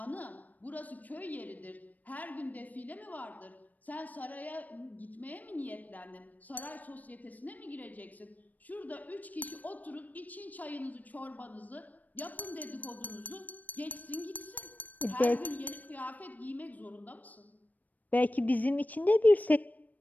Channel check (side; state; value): right; late; 0.080 ms